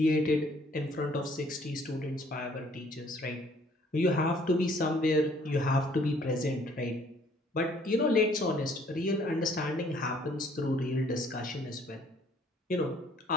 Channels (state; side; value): normal; both; correlation 0.60